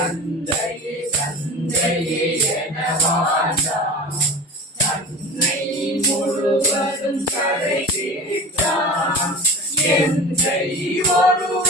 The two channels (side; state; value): both; normal; correlation 0.35